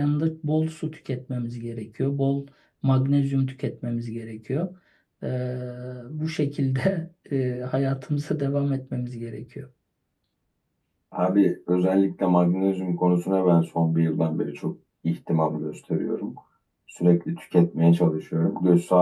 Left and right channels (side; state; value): both; identical; correlation 1.00